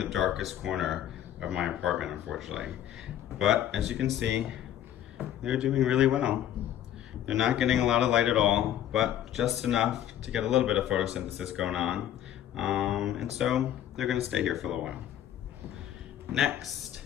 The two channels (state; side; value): quieter; right; 11.2 dB